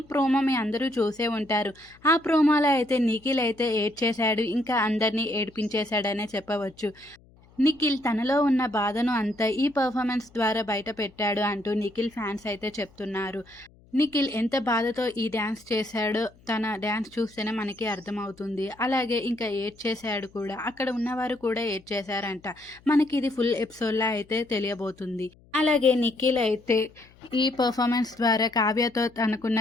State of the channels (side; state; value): left; noise; hum, 28 dB below the sound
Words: ప్రోమో మీ అందరూ చూసే ఉంటారు. ఆ ప్రోమోలో అయితే నిఖిల్ అయితే ఏడ్చేశాడు, ఇంకా అందరినీ ఏడిపించేశాడనే చెప్పవచ్చు. నిఖిల్ తనలో ఉన్న బాధను అంతా ఈ పర్ఫార్మెన్స్ ద్వారా బయట పెట్టాడు అంటూ నిఖిల్ ఫ్యాన్స్ అయితే చెప్తున్నారు. నిఖిల్ ఎంత బాధతో ఈ డ్యాన్స్ చేశాడో తన డ్యాన్స్ చూస్తేనే మనకి అర్థమవుతుంది. అలాగే ఇంకా ఏడ్చేశాడు కూడా. అక్కడ ఉన్నవారు కూడా ఏడ్చేశారంట. మనకి ఇది ఫుల్ ఎపిసోడ్‌లా అయితే తెలియబోతుంది. అలాగే నిఖిల్ అయితే ఈ పర్ఫార్మెన్స్ ద్వారా కావ్యతో తనకున్న